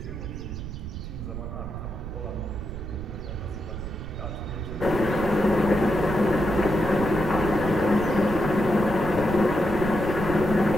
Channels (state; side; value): noise; right; rumble, 8 dB below the sound